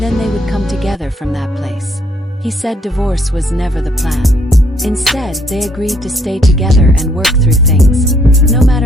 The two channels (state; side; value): normal; both; correlation 0.67